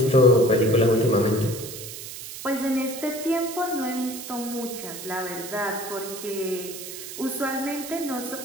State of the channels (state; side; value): noise; right; hiss, 10 dB below the sound